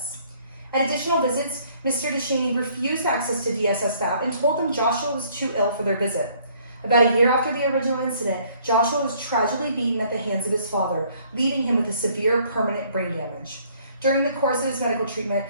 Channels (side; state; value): both; inverted; correlation -0.61